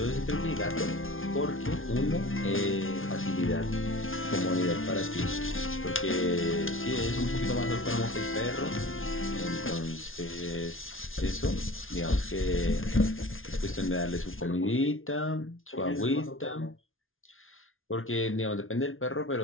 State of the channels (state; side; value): late; right; 0.59 ms